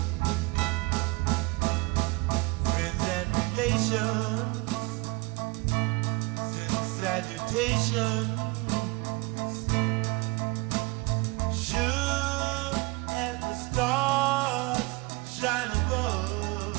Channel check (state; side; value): quieter; left; 24.5 dB